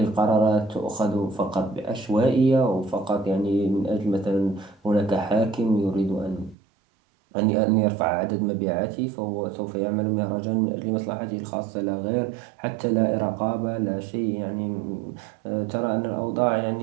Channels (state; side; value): drops out; left; at 6.6 s